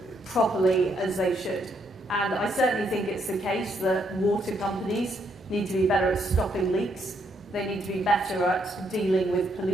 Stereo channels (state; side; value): normal; both; correlation 0.74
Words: properly as they should. And I certainly think it's the case that water companies need to be better at stopping leaks. They need to be better at dealing with